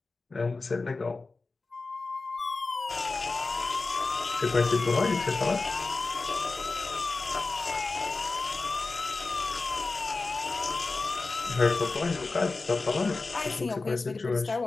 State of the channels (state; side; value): quieter; right; 3.7 dB